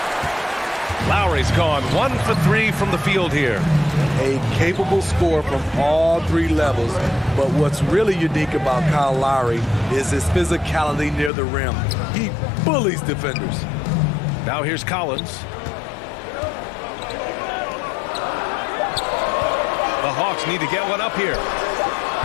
Lowry's gone 1 for 3 from the field here. A capable scorer from all 3 levels. But what's really unique about Kyle Lowry is his physicality near the rim. He bullies defenders. Now here's Collins. The Hawks need to get one up here.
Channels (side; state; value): right; drops out; at 11.3 s